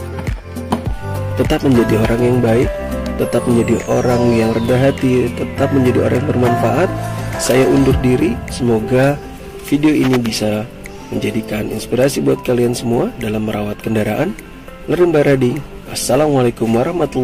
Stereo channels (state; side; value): identical; both; correlation 1.00